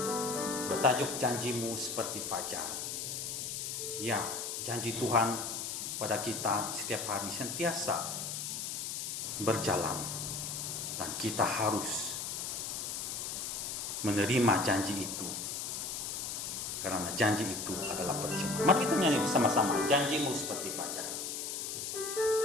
bertajuk Janjimu Seperti Fajar. Ya, janji Tuhan pada kita setiap hari sentiasa berjalan dan kita harus menerima janji itu karena janji itu adalah percuma. Mari kita nyanyi bersama-sama Janjimu Seperti Fajar.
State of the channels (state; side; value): noise; left; hiss, 4 dB below the sound